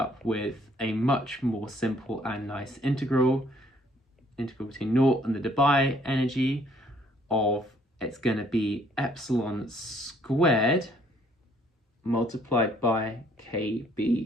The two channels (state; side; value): normal; both; correlation 0.63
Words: with a much more simple and nice integral between naught and the Debye energy of, it's going to be epsilon squared multiplied by